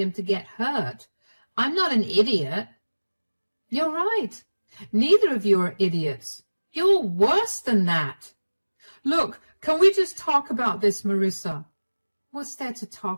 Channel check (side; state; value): both; inverted; correlation -1.00